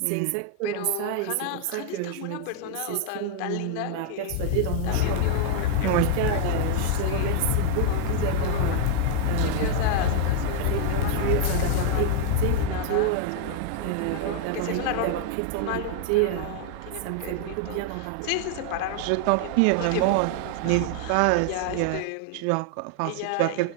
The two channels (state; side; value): different; both; correlation 0.00